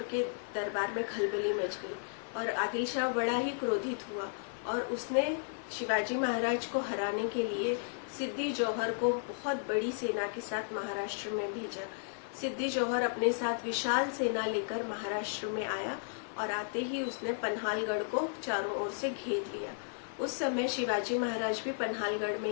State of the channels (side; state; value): right; silent; 55 dB below the other